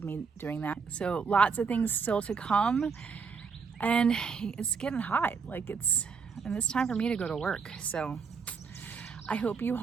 me doing that. So lots of things still to come. And it's getting hot, like and it's time for me to go to work. So I hope you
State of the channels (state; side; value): quieter; left; 5.5 dB